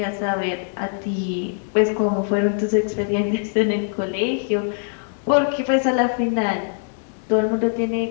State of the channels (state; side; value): silent; right; digital silence